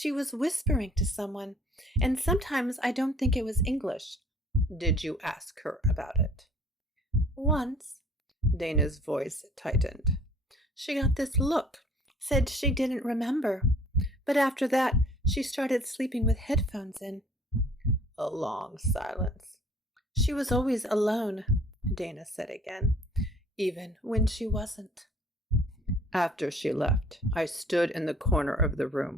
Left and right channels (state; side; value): normal; both; correlation 0.53